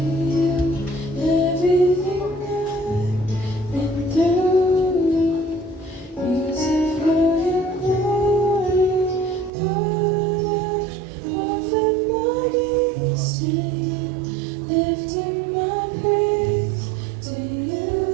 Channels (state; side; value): drops out; left; at 9.5 s